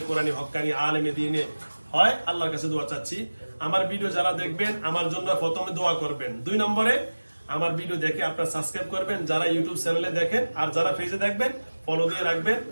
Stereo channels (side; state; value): both; inverted; correlation -1.00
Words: কোরআনী হক্কানি আলেমে দিনে হয়। আল্লাহর কাছে দোয়া চাচ্ছি। আমার ভিডিও যারা দেখবেন আমার জন্য প্রথমে দোয়া করবেন, 2 নম্বরে আমার ভিডিও দেখে আপনারা সাবস্ক্রাইব করবেন, যারা ইউটিউব চ্যানেলে দেখেন, আর যারা পেজে দেখবেন ফলো দিয়ে রাখবেন।